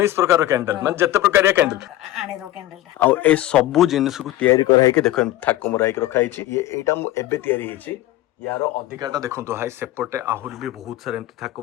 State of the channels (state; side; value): quieter; right; 15.0 dB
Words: ପ୍ରକାର କ୍ୟାଣ୍ଡେଲ, ମାନେ ଯେତେ ପ୍ରକାରିଆ କ୍ୟାଣ୍ଡେଲ ଆଣିର କ୍ୟାଣ୍ଡେଲଟା। ଆଉ ଏ ସବୁ ଜିନିଷକୁ ତିଆରି କରାହେଇକି ଦେଖ ଥାକ ମରା ହେଇକି ରଖା ହେଇଛି। ଏଇଟା ମୁଁ ଏବେ ତିଆରି ହେଇଛି, ୟାର ଅଧିକାଟା ଦେଖନ୍ତୁ ଭାଇ, ସେପଟେ ଆହୁରି ବି ବହୁତ ସାରା ଏମିତି ଥାକ